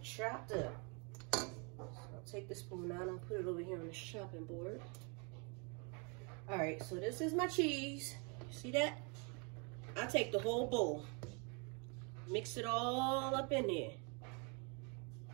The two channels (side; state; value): left; quieter; 34.0 dB